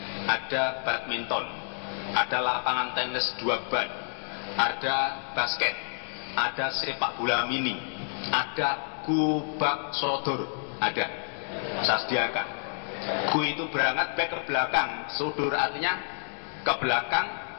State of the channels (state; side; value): silent; right; digital silence